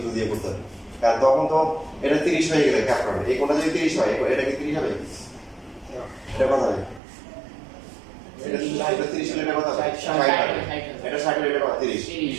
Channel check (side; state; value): left; drops out; at 7.0 s